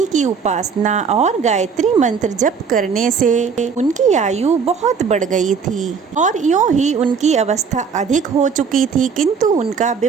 की उपासना और गायत्री मंत्र जप करने से उनकी आयु बहुत बढ़ गई थी और यूं ही उनकी अवस्था अधिक हो चुकी थी, किंतु उनका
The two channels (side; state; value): left; quieter; 6.0 dB